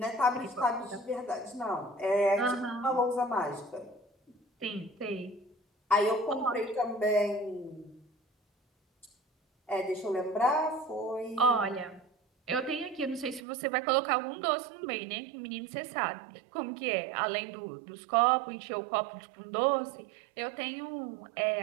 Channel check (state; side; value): drops out; left; at 13.4 s